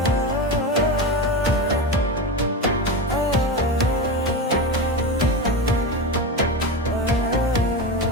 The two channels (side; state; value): both; normal; correlation 0.20